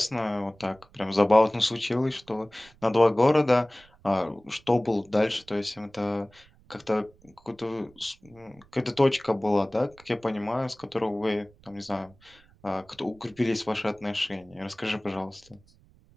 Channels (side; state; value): right; noise; rumble, 28 dB below the sound